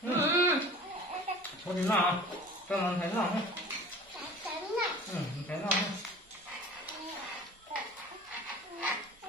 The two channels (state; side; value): normal; both; correlation 0.42